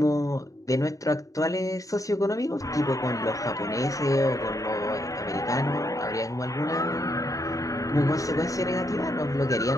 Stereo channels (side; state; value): right; late; 0.16 ms